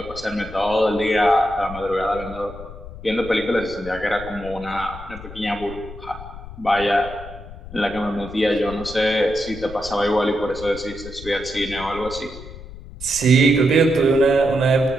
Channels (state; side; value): noise; left; rumble, 14 dB below the sound